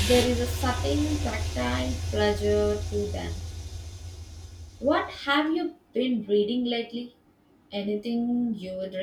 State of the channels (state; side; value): identical; both; correlation 1.00